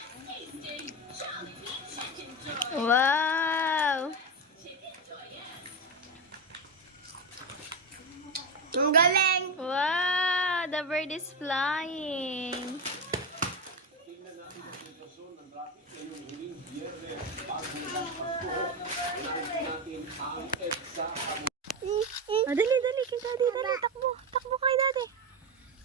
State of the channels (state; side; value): normal; both; correlation 0.15